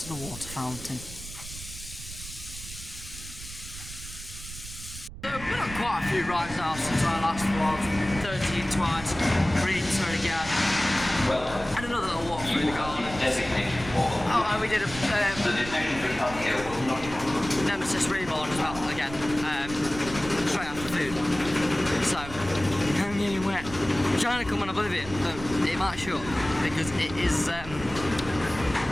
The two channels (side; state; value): right; noise; rumble, 13 dB below the sound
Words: the water fountain. So we've been on quite a few rides now since our last vlog. 13 twice, Greenster again. And another little walk through the garden. Oh, and we did a Nemesis Reborn as well, again, straight after food. So, I'm getting wet. I'm trying to come on Oblivion, but it might shut because it is